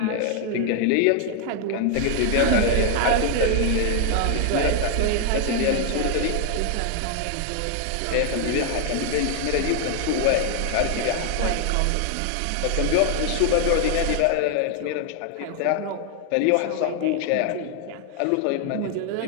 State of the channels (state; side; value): different; both; correlation 0.00